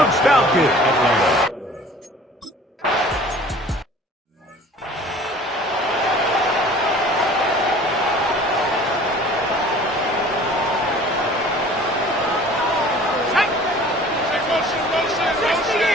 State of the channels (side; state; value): both; normal; correlation 0.48